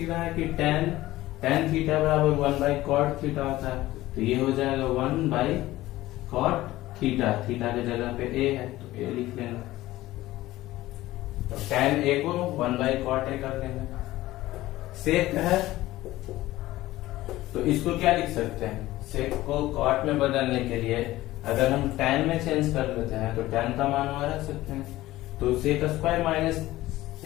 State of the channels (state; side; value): quieter; right; 16.7 dB